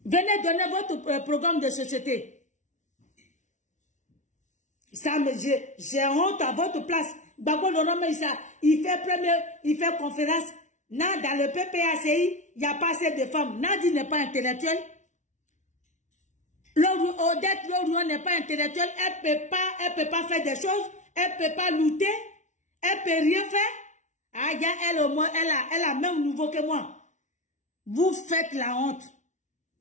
Venez donner votre programme de société. Ça, j'ai honte à votre place. Gbagbo Laurent, il fait conférence. Non, dans le PPACI, il n'y a pas assez de femmes. Nadi n'est pas intellectuelle. Odette Laurent n'est pas intellectuelle. Elle peut pas faire des choses. Elle peut pas lutter. Elle peut rien faire. Ah, elle au moins, elle a même nouveau que moi. Vous faites la honte.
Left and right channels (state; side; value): late; right; 0.36 ms